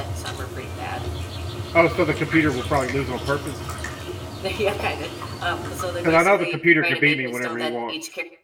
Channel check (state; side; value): identical; both; correlation 1.00